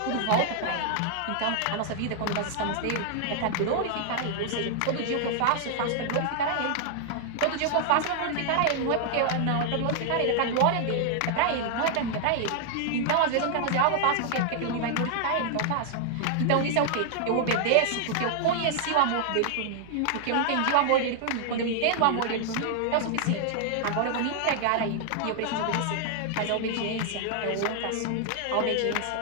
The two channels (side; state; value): both; different; correlation 0.00